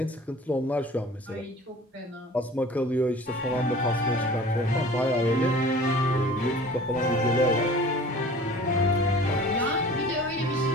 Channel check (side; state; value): both; normal; correlation 0.44